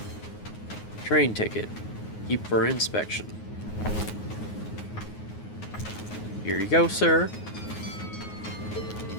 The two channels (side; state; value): right; late; 9.5 ms